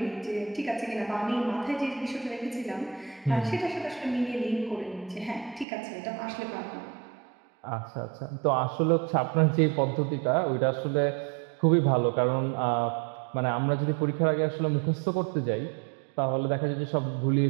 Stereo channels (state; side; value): drops out; left; at 5.7 s